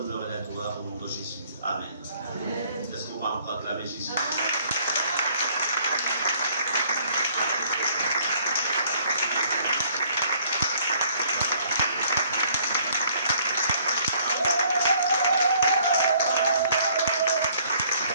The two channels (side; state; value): both; inverted; correlation -0.61